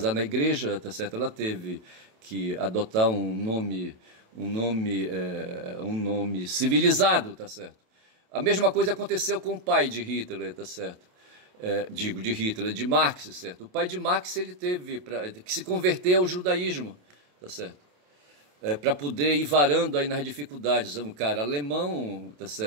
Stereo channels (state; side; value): late; left; 27 ms